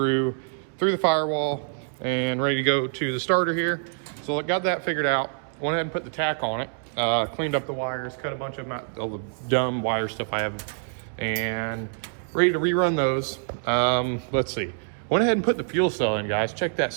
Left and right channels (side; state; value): left; silent; digital silence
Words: the firewall and ready to go to the starter here. So I got that figured out, went ahead and put the tack on it, cleaned up the wires, cut a bunch of all the dumb wire stuff I have, and ready to rerun those. Let's see, went ahead and put the fuel cell in, guys. Check that